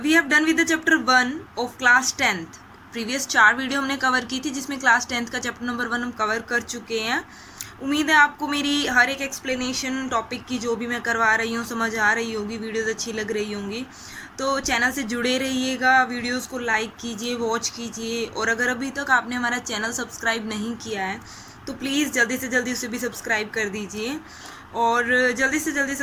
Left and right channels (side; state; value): both; identical; correlation 1.00